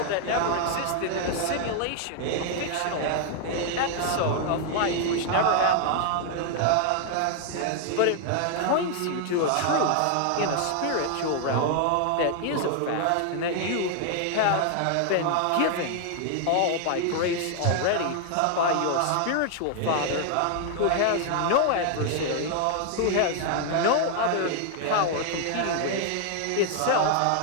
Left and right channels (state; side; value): different; both; correlation 0.00